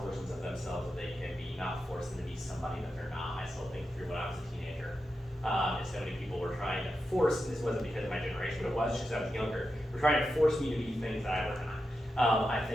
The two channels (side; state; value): both; normal; correlation 0.89